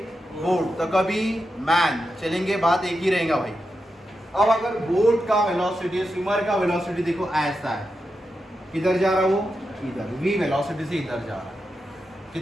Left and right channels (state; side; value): normal; both; correlation 0.88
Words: बोट, तो कभी मैन, चलेंगे, बात एक ही रहेगा भाई। अब अगर बोट का वेलोसिटी, स्विमर का वेलोसिटी देखो ऐसा है, किधर जा रहा वो? इधर, v वेलोसिटी से इधर जा रहा।